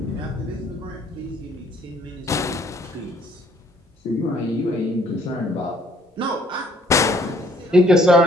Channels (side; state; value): both; normal; correlation 0.62